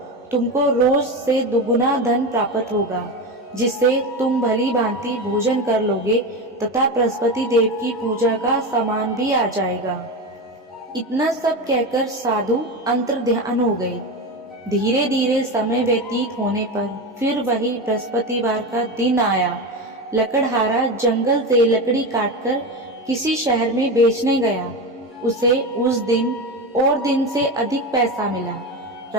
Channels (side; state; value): both; normal; correlation 0.20